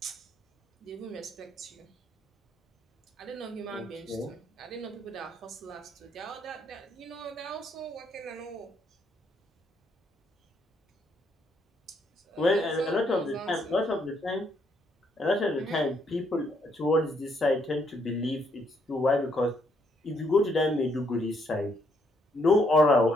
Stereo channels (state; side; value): normal; both; correlation 0.72